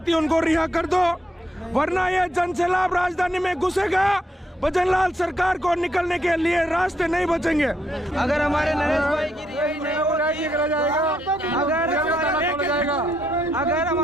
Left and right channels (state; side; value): normal; both; correlation 0.76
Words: उनको रिहा कर दो, वरना ये जन सैलाब राजधानी में घुसेगा। भजनलाल सरकार को निकलने के लिए रास्ते नहीं बचेंगे। अगर हमारे नरेश भाई की रिहाई नहीं होगी, अगर